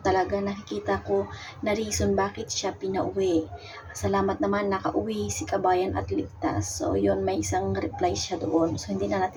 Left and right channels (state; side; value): identical; both; correlation 1.00